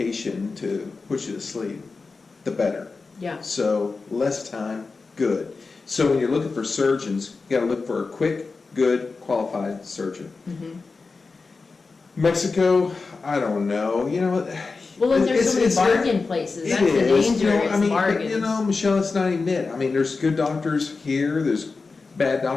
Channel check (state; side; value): quieter; right; 4.2 dB